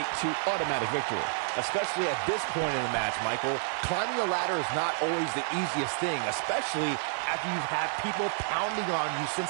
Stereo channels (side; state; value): left; silent; 58 dB below the other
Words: to automatic victory. Especially at this point in the match, Michael. Climbing the ladder is not always the easiest thing, especially after you've had people pounding on you since